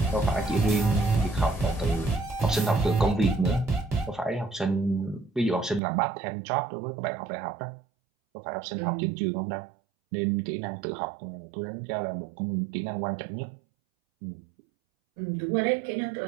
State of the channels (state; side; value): drops out; left; at 5.8 s